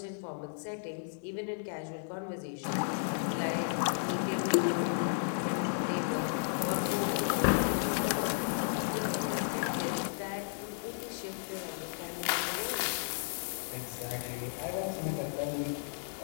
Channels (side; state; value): right; silent; digital silence